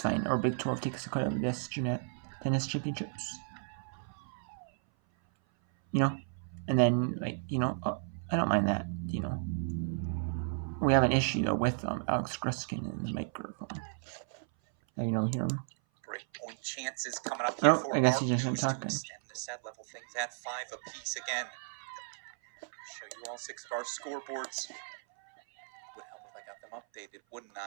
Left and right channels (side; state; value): left; silent; 55 dB below the other